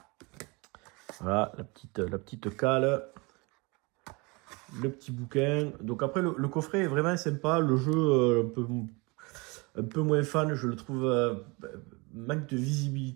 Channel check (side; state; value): left; quieter; 27.3 dB